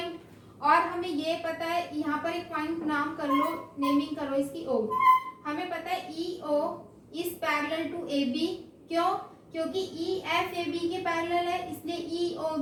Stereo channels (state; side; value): identical; both; correlation 1.00